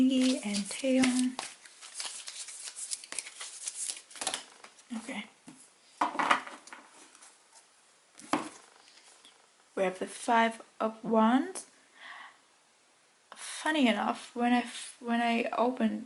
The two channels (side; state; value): both; identical; correlation 1.00